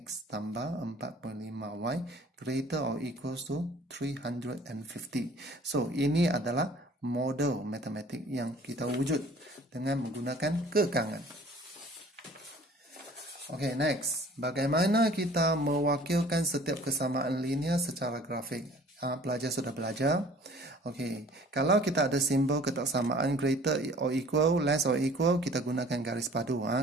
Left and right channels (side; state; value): both; normal; correlation 0.51